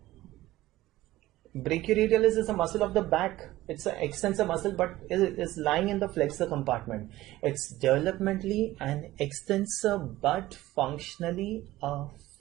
Brachioradialis is a muscle of the back. It's an extensor muscle, but it is lying in the flexor compartment. It's developmentally an extensor, but functionally a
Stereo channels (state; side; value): quieter; left; 16.5 dB